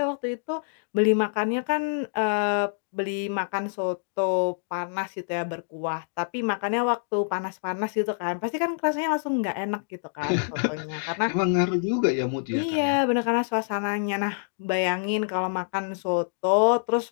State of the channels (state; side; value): silent; right; digital silence